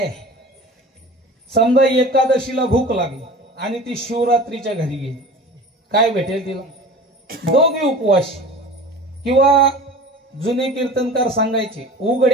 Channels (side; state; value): both; normal; correlation 0.39